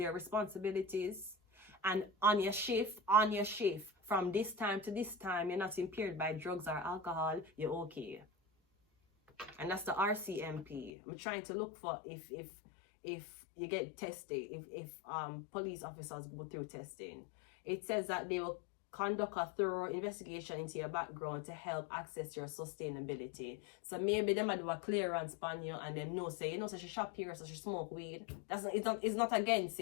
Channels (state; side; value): drops out; right; at 10.9 s